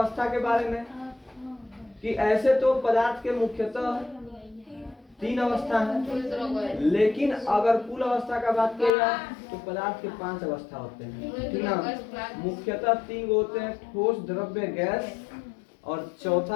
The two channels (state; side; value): drops out; right; at 8.9 s